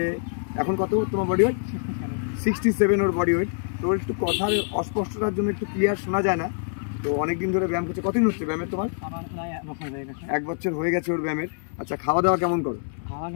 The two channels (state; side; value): silent; right; 61 dB below the other